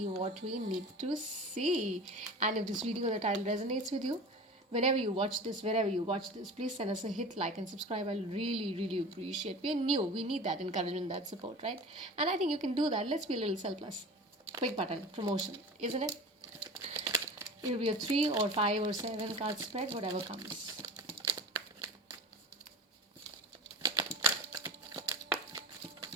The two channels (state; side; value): normal; both; correlation 0.35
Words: what we need to see. And if this video or the title resonates with you, whenever you watch this, wherever you watch this, please send us a hit, like, and subscribe. I'll really, really appreciate. We're new. We need that encouragement, that support, right? And I think you can do that. Let's be a little selfless. Quick button, promotion, isn't it? It'll be a 3 or 5 or 7 card spread, whatever comes.